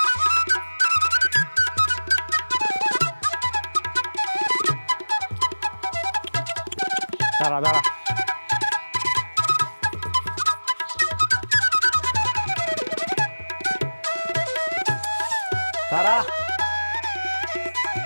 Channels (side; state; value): both; inverted; correlation -1.00